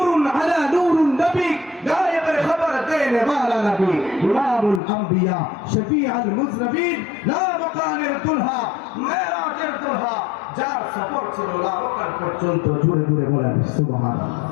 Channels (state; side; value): drops out; right; at 4.8 s